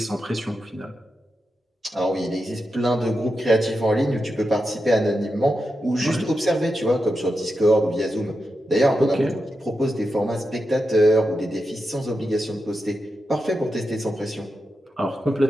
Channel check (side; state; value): both; normal; correlation 0.88